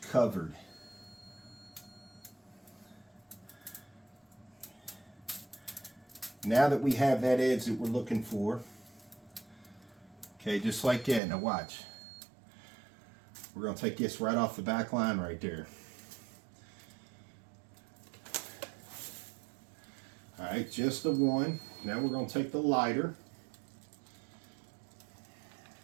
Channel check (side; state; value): left; drops out; at 11.2 s